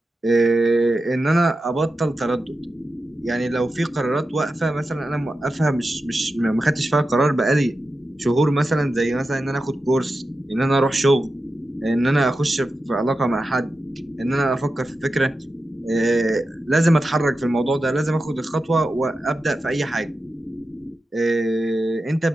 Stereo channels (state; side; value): normal; both; correlation 0.91